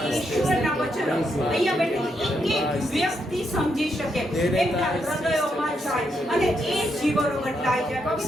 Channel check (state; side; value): normal; both; correlation 0.80